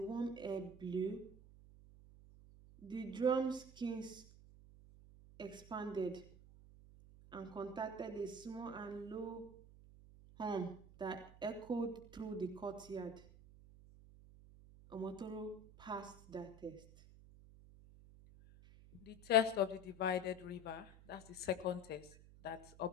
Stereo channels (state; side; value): noise; right; hum, 19 dB below the sound